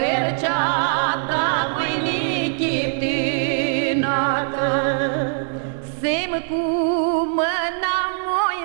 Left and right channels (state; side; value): silent; left; digital silence